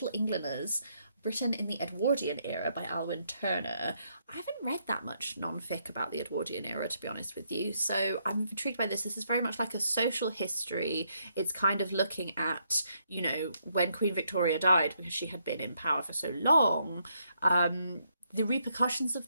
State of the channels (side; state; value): both; inverted; correlation -0.75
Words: Englanders, Britain in the Edwardian Era by Alwyn Turner. I haven't read that much non-fic about the Edwardian era, to be honest with you, so I'm intrigued by this. This is very much like a social history. It's kind of looking at, when Queen Victoria died, because she had been in power for so long, the repercussions of